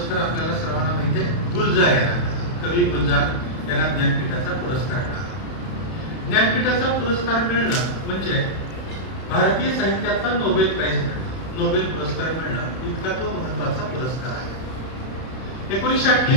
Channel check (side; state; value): right; late; 31 ms